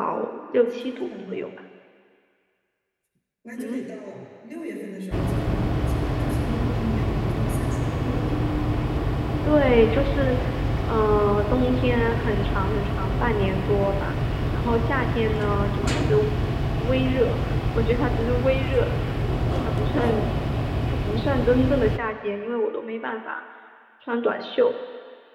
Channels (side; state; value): both; identical; correlation 1.00